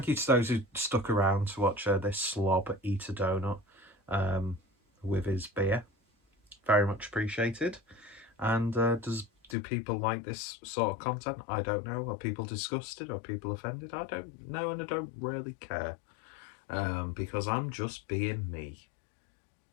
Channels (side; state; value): right; drops out; at 9.6 s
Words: you to those who stuck around to watch this slob eat a donut with his beer. Very much appreciated. And do people like this sort of content? I don't know. Are people disgusted? Are people offended? I don't know, and I don't really care, because I'm just being me.